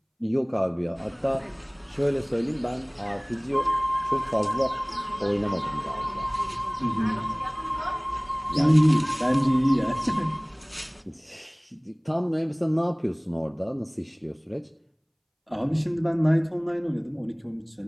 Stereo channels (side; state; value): both; identical; correlation 1.00